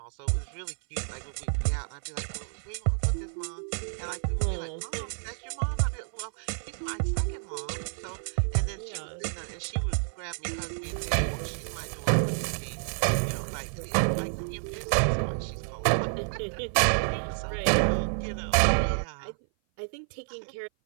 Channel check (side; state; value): left; silent; 56 dB below the other